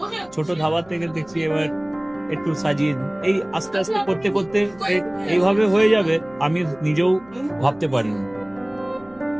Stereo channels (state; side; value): noise; right; hum, 27 dB below the sound